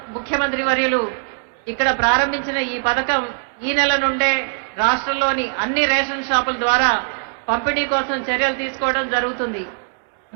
ముఖ్యమంత్రి వర్యులు ఇక్కడ ప్రారంభించిన ఈ పథకం ఈ నెల నుండే రాష్ట్రంలోని అన్ని రేషన్ షాపుల ద్వారా పంపిణీ కోసం చర్యలు తీసుకోవడం జరుగుతుంది.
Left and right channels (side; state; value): left; silent; digital silence